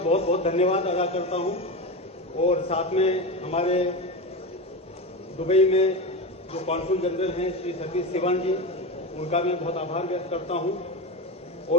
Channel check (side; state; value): both; normal; correlation 0.20